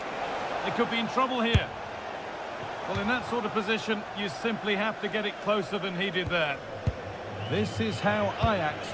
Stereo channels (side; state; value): both; identical; correlation 1.00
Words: They could be in trouble here. Well, in that sort of position, you simply have to get it closer than he did there. This is how Ajax